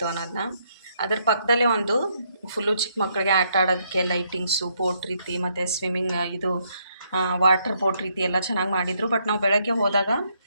ಅನ್ನೋದನ್ನ. ಅದ್ರ ಪಕ್ಕದಲ್ಲೇ ಒಂದು ಫುಲ್ಲು ಚಿಕ್ಕ ಮಕ್ಕಳಿಗೆ ಆಟ ಆಡೋದಕ್ಕೆ ಲೈಟಿಂಗ್ಸು, ಬೋಟ್ ರೀತಿ ಮತ್ತು ಸ್ವಿಮ್ಮಿಂಗ್ ಇದು ವಾಟರ್ ಬೋಟ್ ರೀತಿ ಎಲ್ಲ ಚೆನ್ನಾಗಿ ಮಾಡಿದರು. ಬಟ್ ನಾವು ಬೆಳಗ್ಗೆ ಹೋದಾಗ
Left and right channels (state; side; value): inverted; both; correlation -0.73